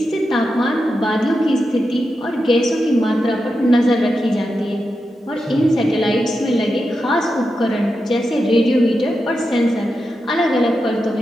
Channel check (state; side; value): normal; both; correlation 0.88